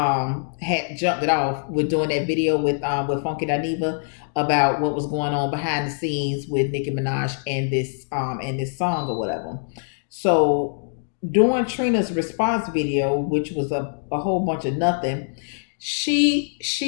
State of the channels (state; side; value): silent; right; digital silence